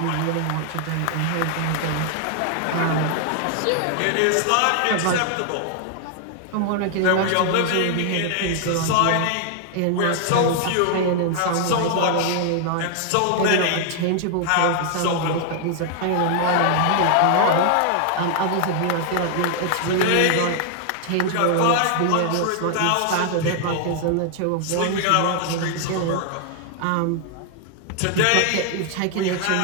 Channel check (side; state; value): both; different; correlation 0.00